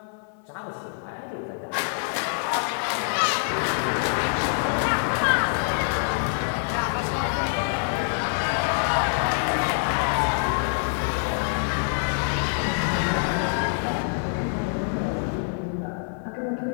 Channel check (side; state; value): right; silent; digital silence